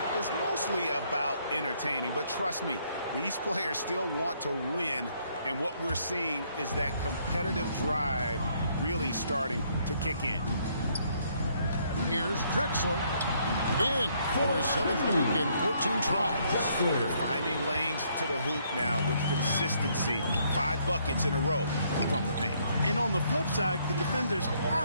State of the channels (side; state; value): both; inverted; correlation -0.69